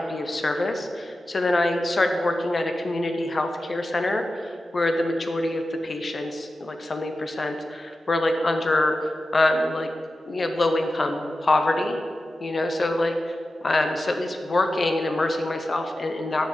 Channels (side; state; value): both; normal; correlation 0.93